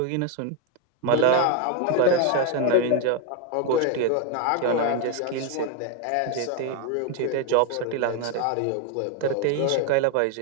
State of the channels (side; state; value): both; different; correlation 0.01